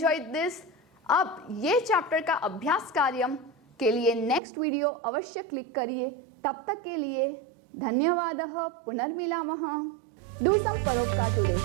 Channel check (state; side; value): drops out; left; at 4.4 s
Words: this. अब ये चैप्टर का अभ्यास कार्य के लिए नेक्स्ट वीडियो अवश्य क्लिक करिए. तब तक के लिए धन्यवादः. पुनर्मिलामः. Do some paropkar today.